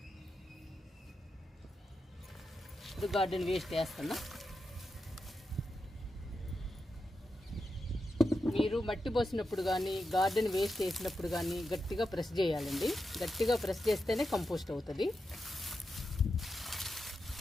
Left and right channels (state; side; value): normal; both; correlation 0.88